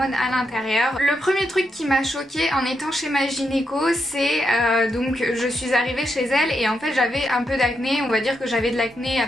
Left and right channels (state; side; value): normal; both; correlation 0.82